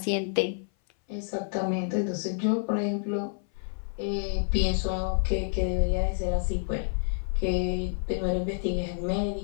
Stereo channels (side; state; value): right; silent; 57 dB below the other